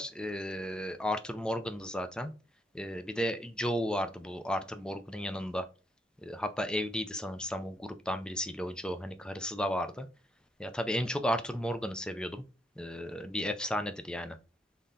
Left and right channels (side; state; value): both; normal; correlation 0.76